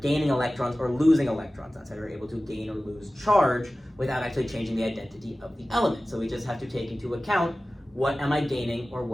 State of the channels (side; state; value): both; normal; correlation 0.96